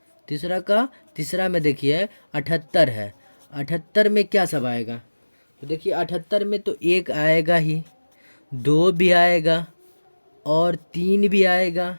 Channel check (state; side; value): inverted; both; correlation -1.00